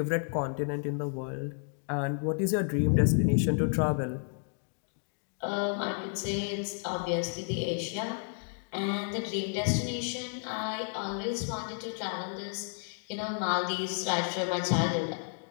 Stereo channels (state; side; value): silent; right; 57 dB below the other